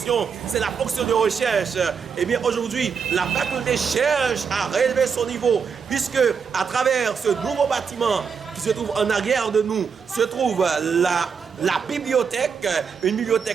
c'est la fonction de recherche. Et bien aujourd'hui, la faculté cherche à relever son niveau, puisque à travers ce nouveau bâtiment qui se trouve en arrière de nous, se trouve la bibliothèque, une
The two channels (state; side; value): quieter; left; 6.2 dB